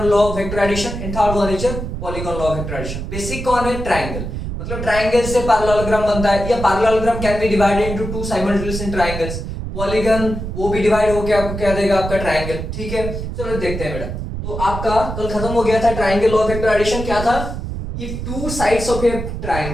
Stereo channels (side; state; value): right; noise; rumble, 6 dB below the sound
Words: law of vector addition, and third one is polygon law of vector addition. Basic कौन है? ट्रायंगल, मतलब ट्रायंगल से पैरेललोग्राम बनता है, या parallelogram can be divided into two simultaneous triangles. Polygon वो भी डिवाइड होकर आपको क्या देगा, आपका ट्रायंगल, ठीक है। चलो देखते हैं बेटा। तो आपका कल खत्म हो गया था triangle law of vector addition. क्या था? if two sides of a